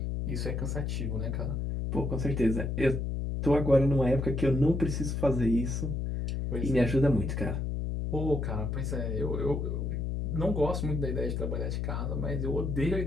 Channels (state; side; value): noise; left; hum, 1 dB below the sound